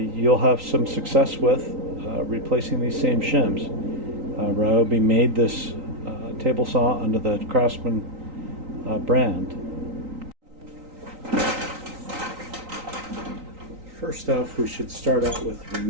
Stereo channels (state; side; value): late; left; 3.9 ms